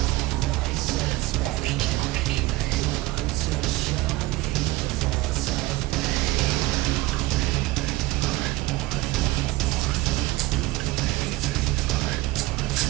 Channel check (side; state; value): left; quieter; 19.3 dB